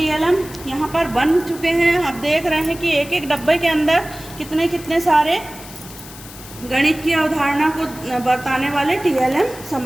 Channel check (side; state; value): left; noise; hiss, 17 dB below the sound